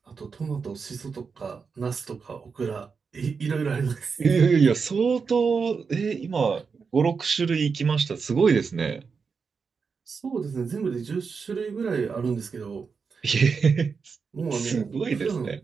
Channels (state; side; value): quieter; left; 5.4 dB